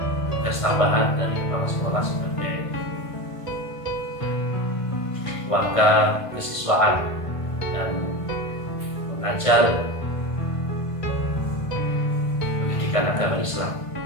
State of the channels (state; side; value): late; right; 1.5 ms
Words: tugas tambahan dari kepala sekolah sebagai warga kesiswaan dan mengajar pendidikan agama Islam.